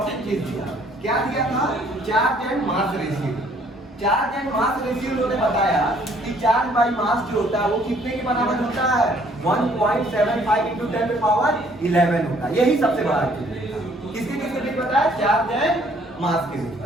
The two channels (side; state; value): both; normal; correlation 0.61